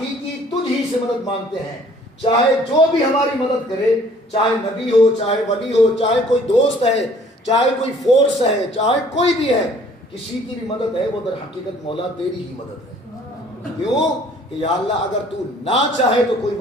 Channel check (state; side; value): normal; both; correlation 0.56